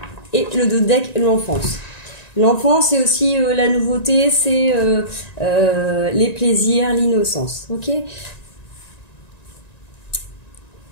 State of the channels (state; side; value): late; right; 1.9 ms